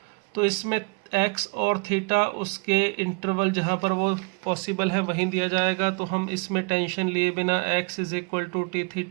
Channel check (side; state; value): left; quieter; 33.4 dB